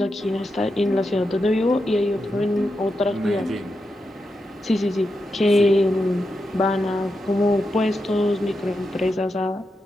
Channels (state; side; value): normal; both; correlation 0.87